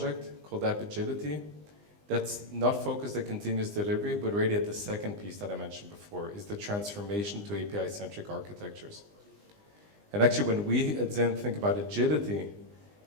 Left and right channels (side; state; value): left; late; 20 ms